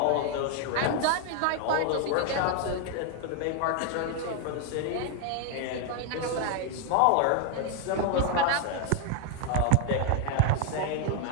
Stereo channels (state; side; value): different; both; correlation 0.00